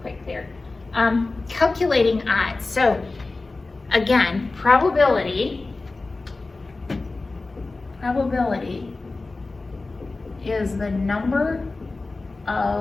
quick there. Calculating odds. So again, probability is the number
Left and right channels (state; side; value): quieter; right; 3.4 dB